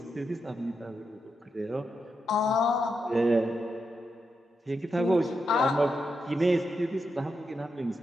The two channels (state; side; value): normal; both; correlation 0.85